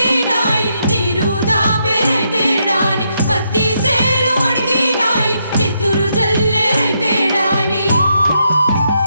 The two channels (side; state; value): both; inverted; correlation -0.79